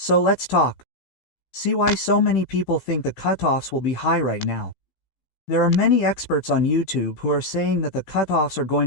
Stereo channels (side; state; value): right; late; 15 ms